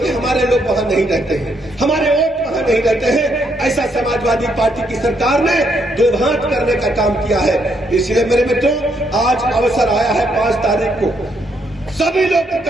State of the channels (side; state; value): both; normal; correlation 0.75